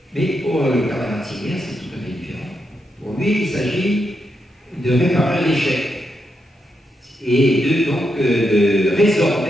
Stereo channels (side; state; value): both; normal; correlation 0.83